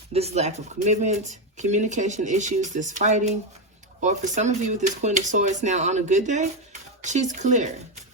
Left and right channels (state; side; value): normal; both; correlation 0.09